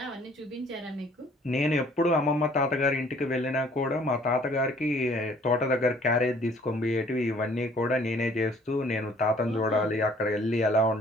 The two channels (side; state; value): both; normal; correlation 0.57